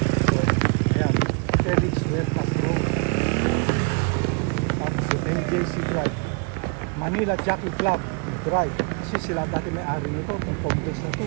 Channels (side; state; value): left; quieter; 36.5 dB